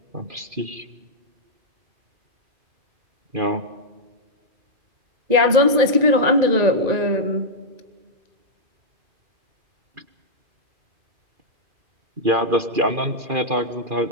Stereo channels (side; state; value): left; late; 2.4 ms